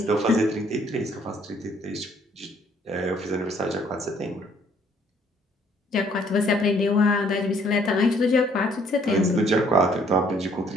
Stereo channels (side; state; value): both; normal; correlation 0.63